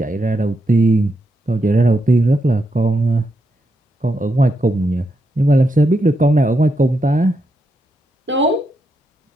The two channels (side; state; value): both; normal; correlation 0.83